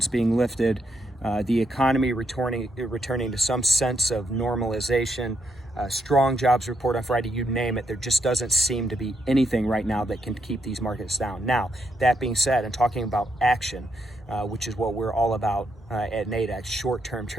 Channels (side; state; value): both; normal; correlation 0.79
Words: being lifted, the economy returning to some sense of normalization, strong jobs report on Friday, you name it. There just doesn't seem to be anything right now that can keep these markets down. Now, that being said, and talking about action, which is what we're all about at Nadex, short-term